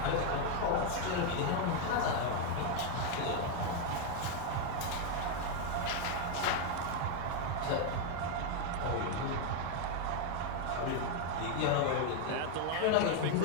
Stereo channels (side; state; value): both; different; correlation 0.01